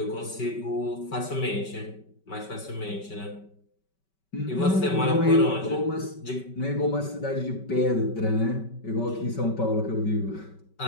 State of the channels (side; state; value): right; late; 5.2 ms